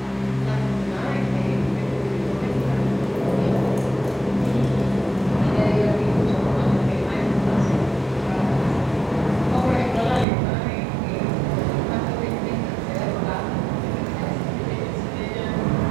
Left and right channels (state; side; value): drops out; left; at 10.2 s